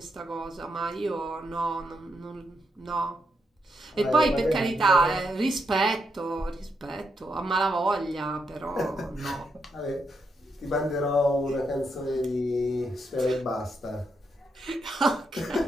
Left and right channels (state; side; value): normal; both; correlation 0.80